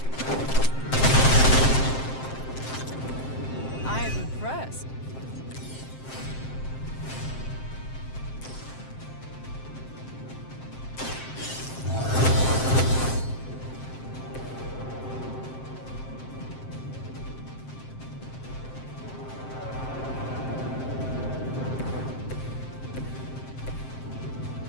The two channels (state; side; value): late; right; 7.6 ms